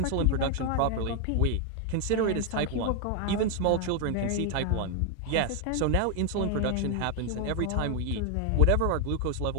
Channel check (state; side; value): different; both; correlation 0.01